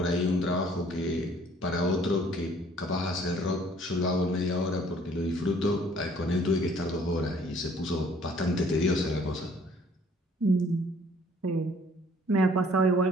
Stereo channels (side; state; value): both; normal; correlation 0.58